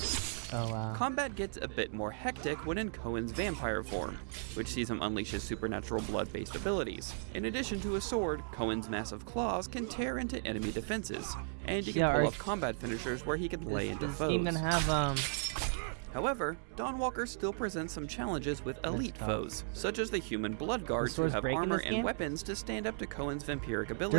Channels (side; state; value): left; silent; digital silence